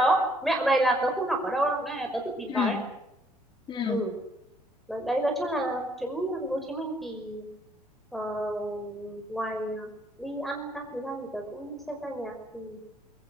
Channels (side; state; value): both; normal; correlation 0.67